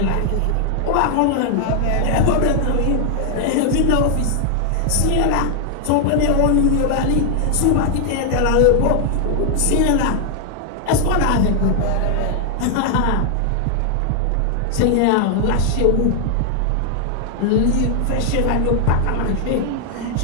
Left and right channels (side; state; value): both; different; correlation 0.00